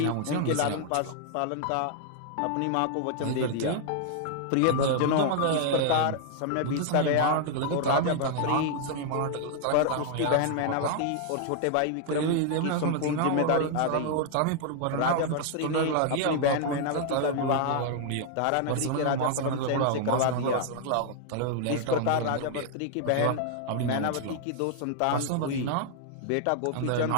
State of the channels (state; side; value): different; both; correlation 0.00